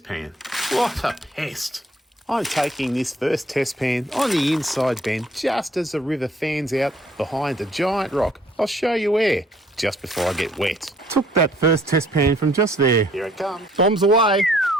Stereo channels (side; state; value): both; normal; correlation 0.61